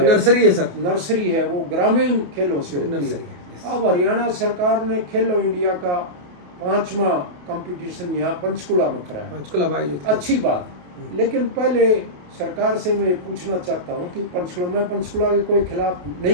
नर्सरी है सर, नर्सरी है, वो ग्रामीण खेलों से होती है। अब हरियाणा सरकार ने खेलो इंडिया का 5वां कंपटीशन यहाँ पंचकुला में कराया, पंचकुला में आयोजित, अच्छी बात। लेकिन पहले सरकार से मैं पूछना चाहता हूँ कि पंचकुला के कोई खिलाफ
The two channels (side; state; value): left; late; 28 ms